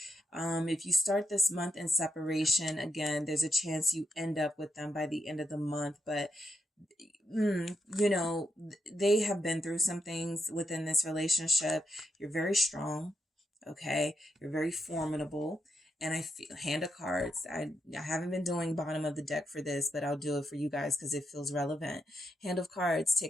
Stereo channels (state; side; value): normal; both; correlation 0.82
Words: If you start this month in separation, again, there's a chance you end up with them by the end of the month. But, you know, they have been through some things within this relationship. You're very strong. Okay. You're very formidable. And I feel Hand of Cards. I haven't been doing bottom of the deck for this, but I'll do it for you guys because it feels relevant. Hand of Cards,